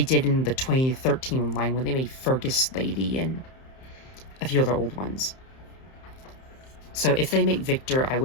in the 2013 line when they made Fergus Lady and a few other old ones. So if they make Victor, I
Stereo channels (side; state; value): right; late; 31 ms